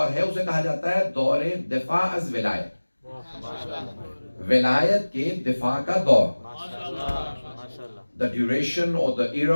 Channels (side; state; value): both; inverted; correlation -1.00